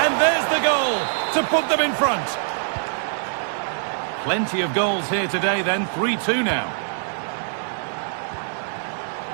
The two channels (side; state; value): left; silent; 63 dB below the other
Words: there's the goal to put them in front. Plenty of goals here today then, 3-2 now.